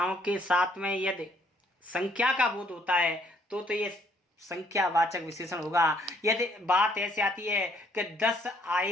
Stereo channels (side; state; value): both; normal; correlation 0.66